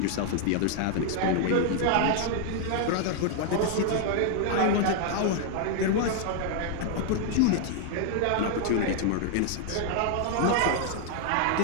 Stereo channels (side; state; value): both; different; correlation 0.00